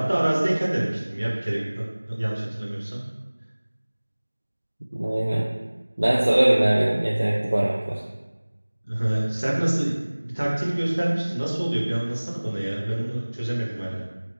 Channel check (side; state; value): both; inverted; correlation -1.00